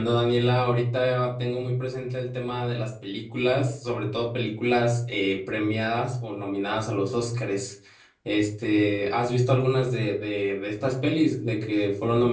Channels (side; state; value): both; identical; correlation 1.00